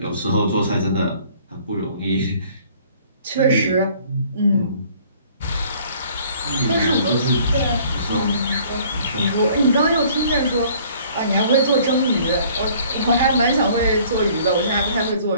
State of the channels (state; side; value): inverted; both; correlation -0.56